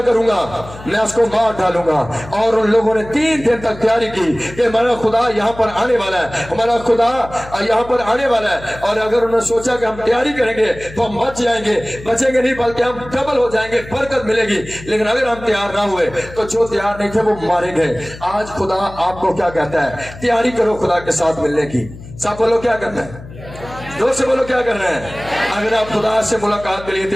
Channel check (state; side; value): noise; left; hum, 16 dB below the sound